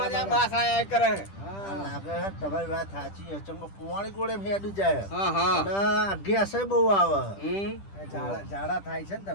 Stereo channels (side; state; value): right; late; 10 ms